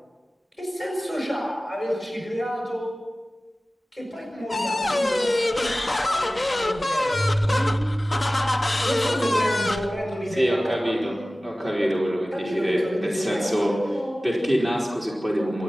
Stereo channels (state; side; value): normal; both; correlation 0.97